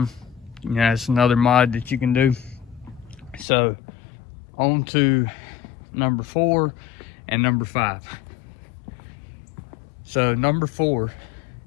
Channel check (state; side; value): drops out; right; at 3.5 s